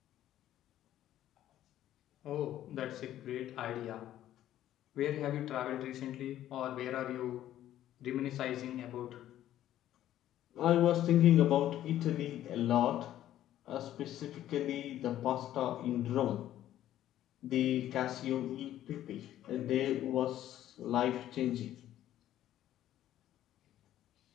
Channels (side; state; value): right; quieter; 12.5 dB